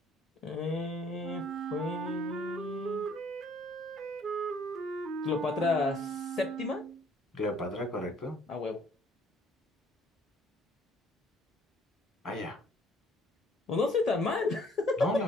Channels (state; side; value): normal; both; correlation 0.60